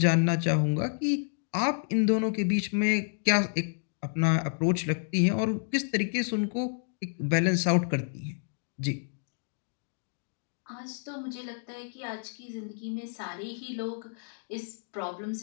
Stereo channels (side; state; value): right; silent; digital silence